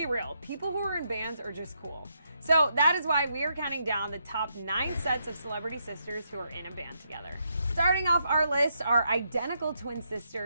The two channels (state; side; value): inverted; both; correlation -0.78